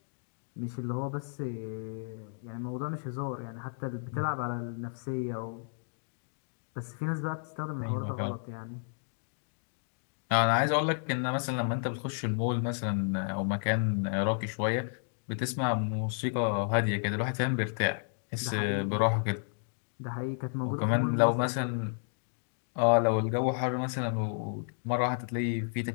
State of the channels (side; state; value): right; silent; digital silence